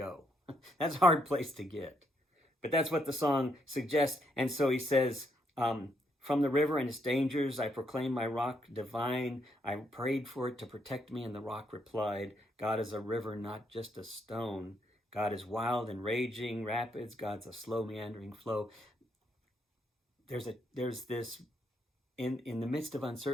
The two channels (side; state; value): both; normal; correlation 0.75